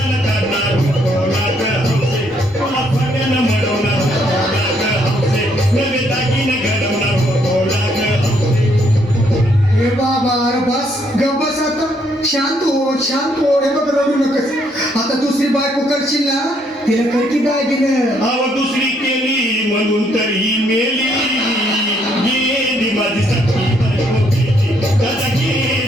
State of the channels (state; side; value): normal; both; correlation 0.70